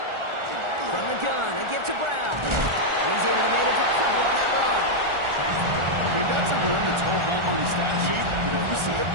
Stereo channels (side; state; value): left; late; 1.4 ms